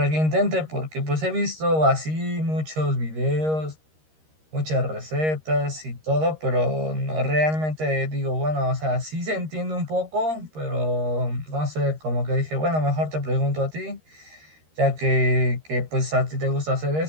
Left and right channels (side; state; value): left; late; 13 ms